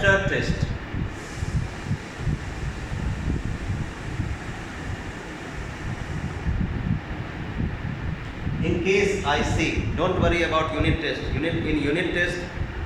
test. In case I see, don't worry about unit test. In unit test,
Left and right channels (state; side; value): identical; both; correlation 1.00